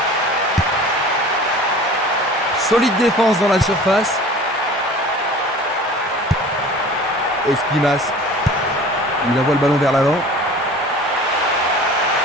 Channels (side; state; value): both; normal; correlation 0.42